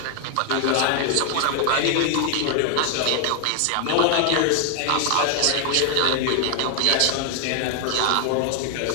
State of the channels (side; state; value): both; different; correlation 0.00